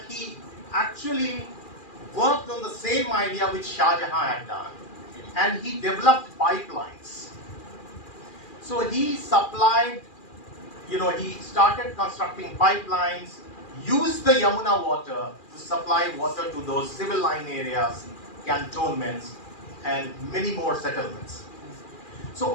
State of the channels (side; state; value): right; late; 2.4 ms